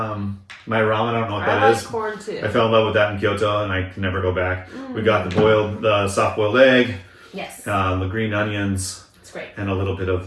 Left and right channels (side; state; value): both; identical; correlation 1.00